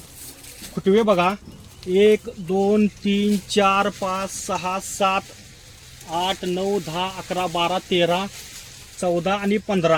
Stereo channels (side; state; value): both; identical; correlation 1.00